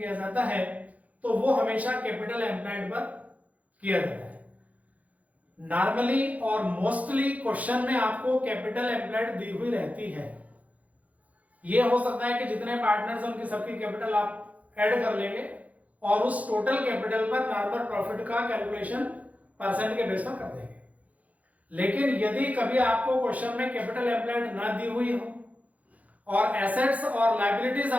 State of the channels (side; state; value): left; late; 0.071 ms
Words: जाता है तो वो हमेशा कैपिटल एम्प्लॉयड पर किया जाता है। नॉर्मली और मोस्टली क्वेश्चन में आपको कैपिटल एम्प्लॉयड दी हुई रहती है। ये हो सकता है कि जितने पार्टनर्स हैं उनकी सबकी कैपिटल आप ऐड कर लेंगे और उस टोटल कैपिटल पर नॉर्मल प्रॉफिट का कैलकुलेशन परसेंट के बेस पर कर देंगे। लेकिन यदि कभी आपको क्वेश्चन में कैपिटल एम्प्लॉयड ना दी हुई हो और एसेट्स और लायबिलिटीज